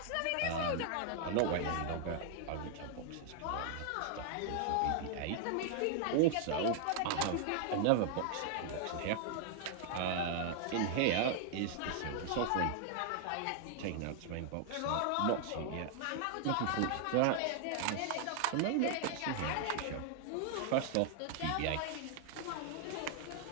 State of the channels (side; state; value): both; different; correlation -0.01